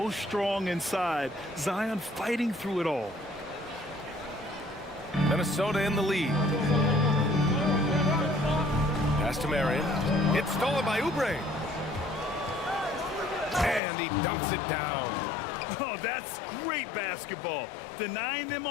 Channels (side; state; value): right; drops out; at 13.8 s